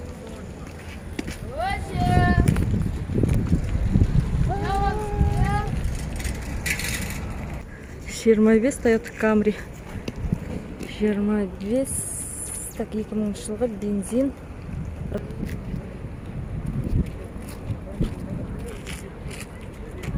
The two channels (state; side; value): identical; both; correlation 1.00